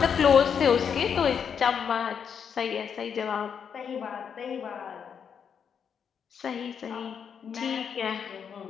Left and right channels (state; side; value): quieter; right; 7.3 dB